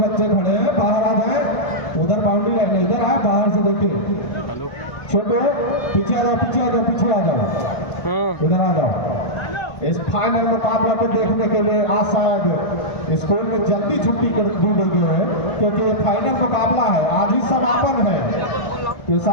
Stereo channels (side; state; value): right; late; 1.5 ms